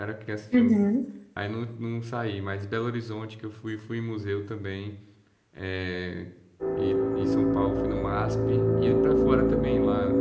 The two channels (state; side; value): identical; both; correlation 1.00